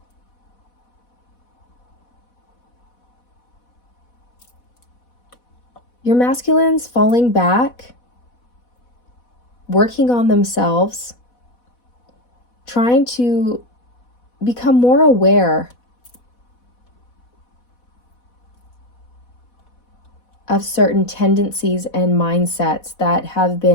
Your masculine's falling back, working on themselves, trying to become more aware of certain tendencies and mindsets that have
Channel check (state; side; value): late; right; 4.1 ms